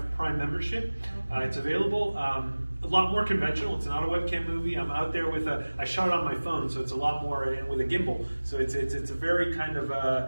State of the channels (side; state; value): both; inverted; correlation -1.00